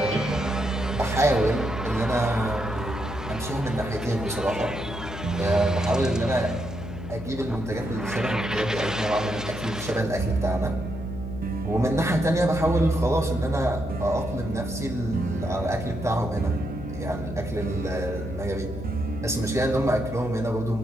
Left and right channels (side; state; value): left; noise; hum, 9 dB below the sound